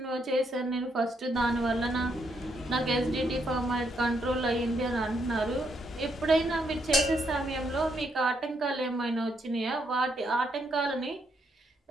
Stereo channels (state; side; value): normal; both; correlation 0.76